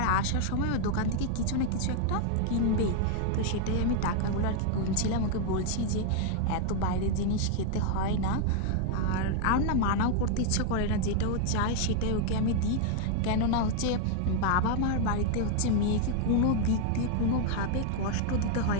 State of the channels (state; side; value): different; both; correlation 0.00